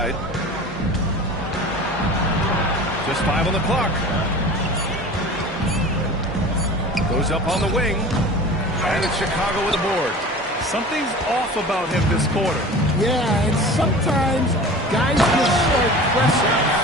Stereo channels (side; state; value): both; normal; correlation 0.38